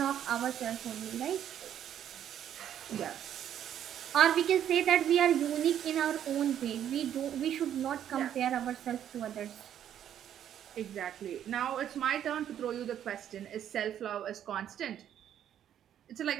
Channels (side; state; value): left; quieter; 10.2 dB